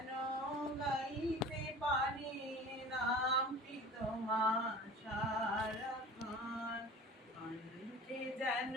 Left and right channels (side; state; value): both; normal; correlation 0.40